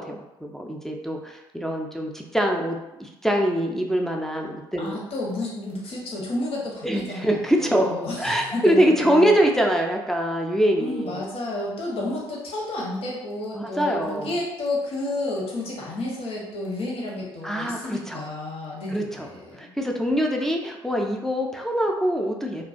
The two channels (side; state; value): both; normal; correlation 0.79